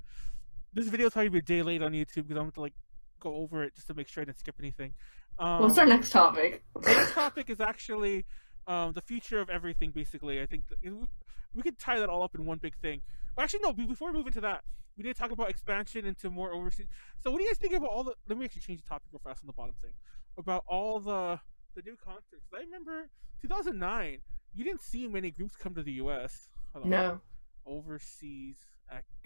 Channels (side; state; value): both; inverted; correlation -1.00